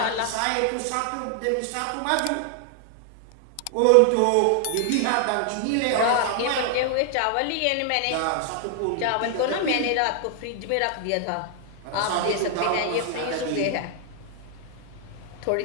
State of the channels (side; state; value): both; different; correlation 0.00